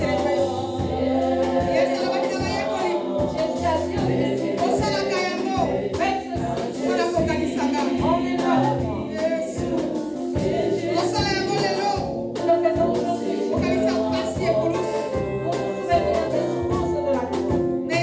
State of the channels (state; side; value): identical; both; correlation 1.00